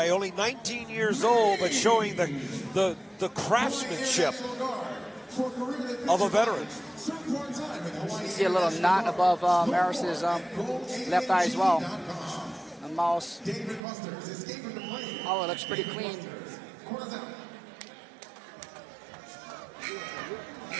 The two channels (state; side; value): drops out; left; at 13.8 s